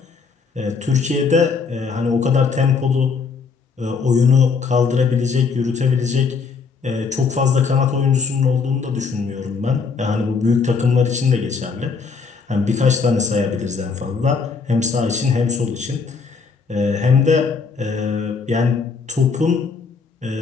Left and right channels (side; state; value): right; quieter; 5.1 dB